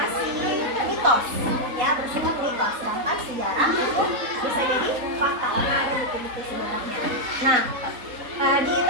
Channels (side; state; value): left; late; 3.8 ms